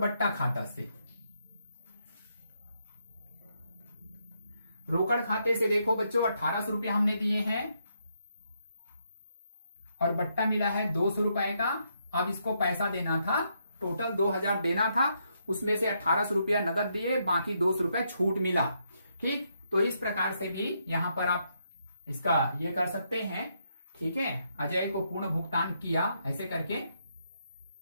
खाता से। रोकड़ खाते से देखो बच्चों 1,800 रुपया हमने दिए हैं और बट्टा मिला है 200 रुपए का। अब इसको पैसा देना था, टोटल 2,000 देना था, उसमें से 1,800 रुपया नगद दिए, बाकी 200 रुपया छूट मिला। ठीक, तो इस प्रकार से भी यहां पर आप इसका ये कर सकते हैं। ठीक है, अजय को पूर्ण भुगतान किया, ऐसे करके,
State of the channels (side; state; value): both; inverted; correlation -0.77